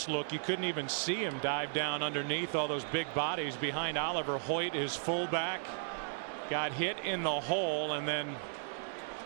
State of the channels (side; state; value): left; silent; digital silence